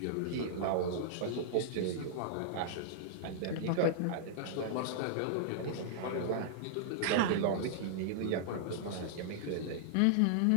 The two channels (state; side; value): different; both; correlation -0.01